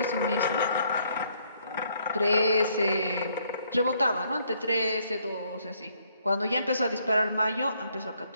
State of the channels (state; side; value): inverted; both; correlation -0.69